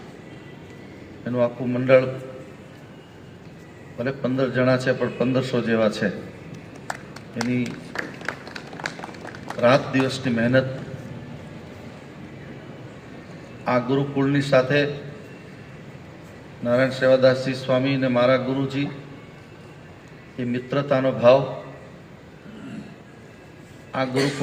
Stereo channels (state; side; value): identical; both; correlation 1.00